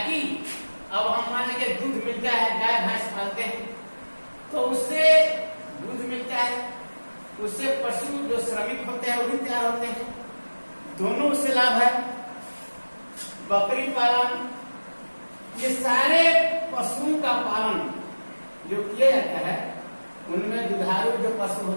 अब हम मान लीजिए दूध मिलता है, गाय भैंस पालते हैं तो उससे दूध मिलता है, उससे पशु जो श्रमिक होते हैं वो भी तैयार होते हैं, दोनों उससे लाभ है। बकरी पालन, ये सारे पशुओं का पालन जो किया जाता है उनमें दुधारू जो पशु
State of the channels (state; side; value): inverted; both; correlation -1.00